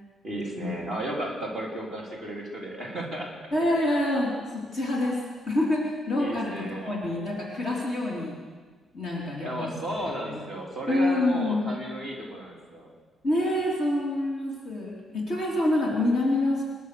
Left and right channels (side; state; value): both; normal; correlation 0.77